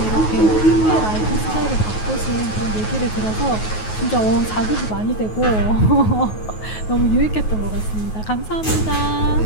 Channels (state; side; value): late; right; 9.4 ms